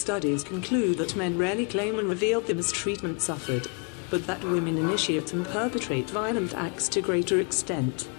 conclude that men rarely claim and reveal the mistreatment suffered, but that women initiate and perpetrate violent acts to greater extent.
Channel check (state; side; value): quieter; right; 35.0 dB